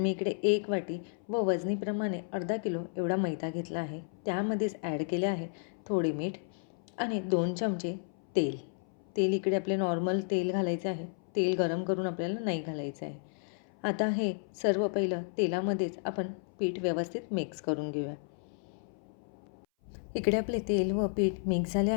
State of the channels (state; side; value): silent; right; 56 dB below the other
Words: इकडे 1 वाटी व वजनीप्रमाणे अर्धा किलो एवढा मैदा घेतला आहे. त्यामध्येच ॲड केले आहे थोडे मीठ आणि 2 चमचे तेल. तेल इकडे आपले नॉर्मल तेल घालायचे आहे. तेल गरम करून आपल्याला नाही घालायचं आहे. आता हे सर्व पहिलं तेलामध्येच आपण पीठ व्यवस्थित मिक्स करून घेऊया. इकडे आपले तेल व पीठ मिक्स झाले